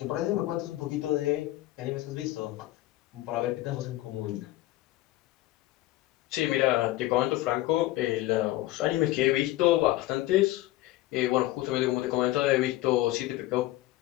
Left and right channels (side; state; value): right; quieter; 16.9 dB